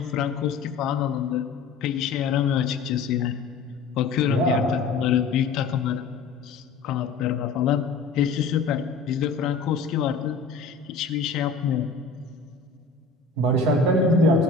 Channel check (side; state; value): right; quieter; 4.5 dB